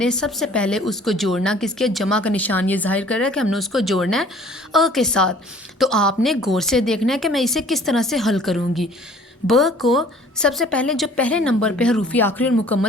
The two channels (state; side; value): normal; both; correlation 0.52